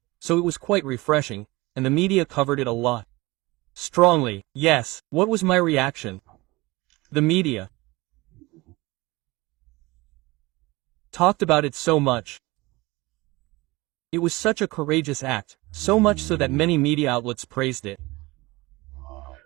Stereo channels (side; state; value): left; quieter; 21.9 dB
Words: so it was quite refreshing, and the media covered it a lot. Strongly, yes. What was my reaction? The media talked about it so much. It was such a courageous act, so much so that many media outlets praised it.